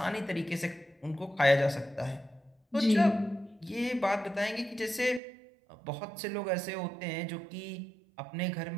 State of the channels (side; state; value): left; drops out; at 5.2 s